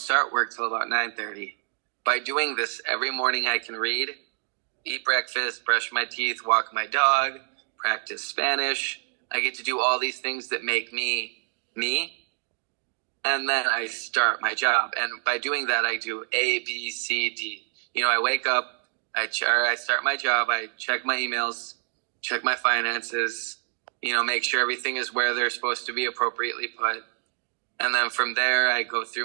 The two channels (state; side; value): silent; left; 58 dB below the other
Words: work till about 9:30. By doing this every morning, I can read, eat breakfast, brush my teeth, walk my dog, practice Spanish. I get to do all these things that make me, me. And then I start my job. And by doing that, I do A, B, C, D. I wake up, I start my job, I check my emails, check my finances, make sure everything is where they're supposed to be appropriately put. And then from there, I go